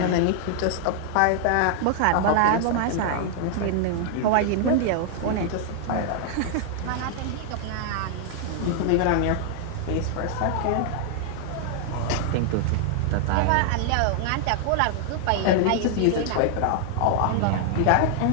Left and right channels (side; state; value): both; different; correlation 0.00